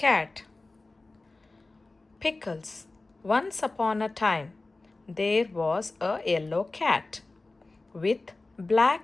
Pickles. Once upon a time, there was a yellow cat with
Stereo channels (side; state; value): right; quieter; 3.3 dB